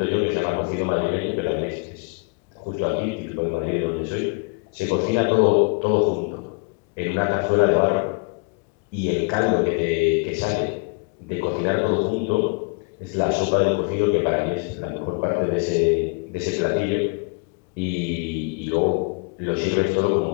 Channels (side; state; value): right; quieter; 32.9 dB